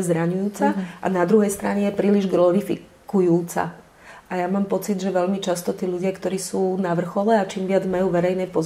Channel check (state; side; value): identical; both; correlation 1.00